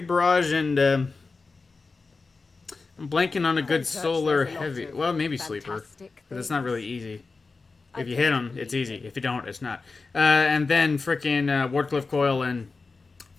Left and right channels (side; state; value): right; quieter; 4.1 dB